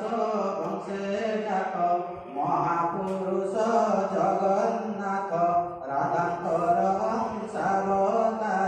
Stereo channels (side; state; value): both; identical; correlation 1.00